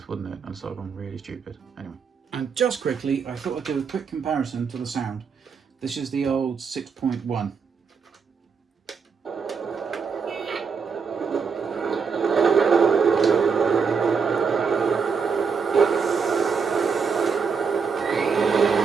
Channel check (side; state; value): left; quieter; 5.8 dB